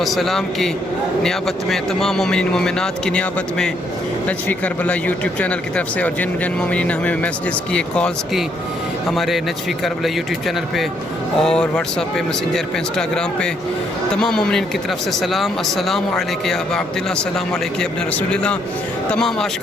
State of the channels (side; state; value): both; normal; correlation 0.72